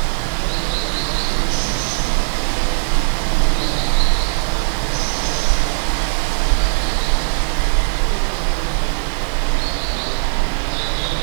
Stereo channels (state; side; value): silent; left; digital silence